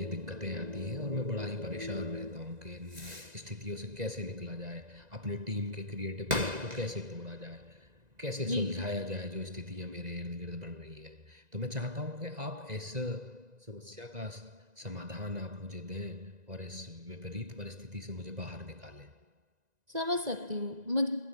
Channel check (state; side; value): late; left; 1.9 ms